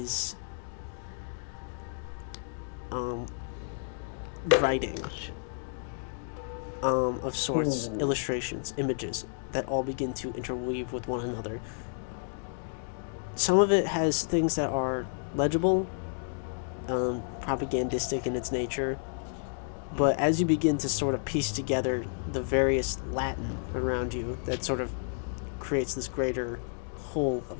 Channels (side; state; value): right; silent; digital silence